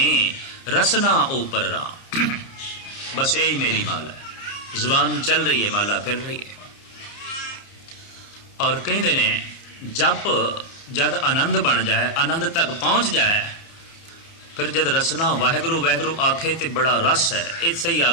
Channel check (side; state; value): right; late; 30 ms